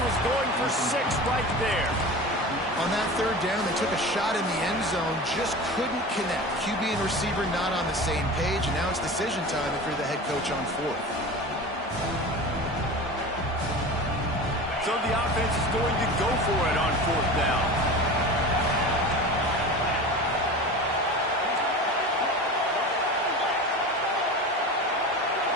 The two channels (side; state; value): both; normal; correlation 0.32